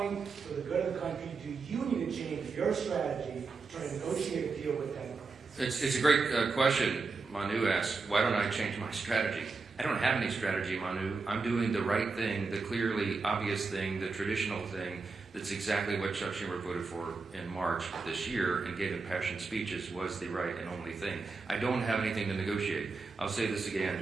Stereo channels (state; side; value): quieter; left; 4.3 dB